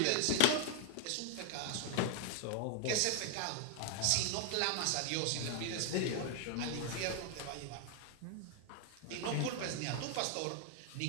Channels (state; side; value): different; both; correlation 0.00